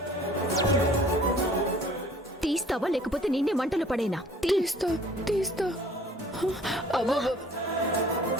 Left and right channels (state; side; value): normal; both; correlation 0.52